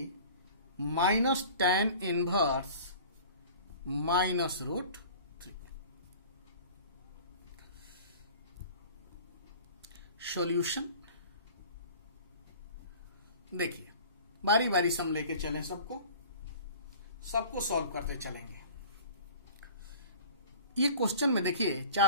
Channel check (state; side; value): inverted; both; correlation -0.44